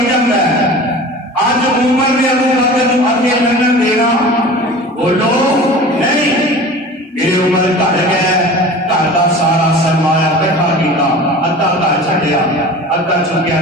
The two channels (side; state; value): both; normal; correlation 0.38